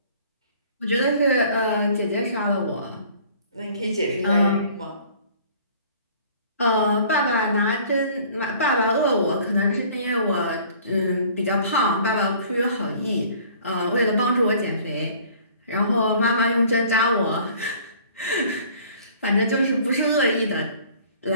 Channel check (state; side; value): inverted; both; correlation -0.52